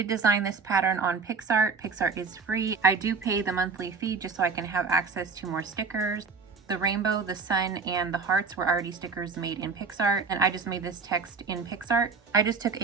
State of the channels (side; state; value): left; quieter; 4.9 dB